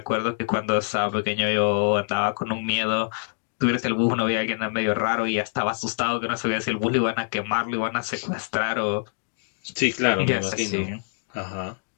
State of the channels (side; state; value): right; silent; digital silence